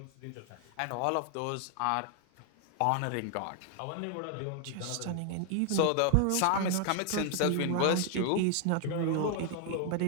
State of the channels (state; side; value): different; both; correlation 0.00